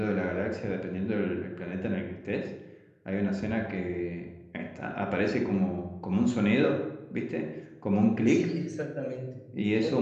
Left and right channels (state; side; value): identical; both; correlation 1.00